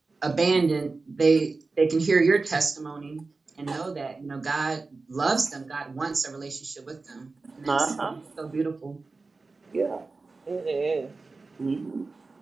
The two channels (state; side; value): quieter; left; 3.8 dB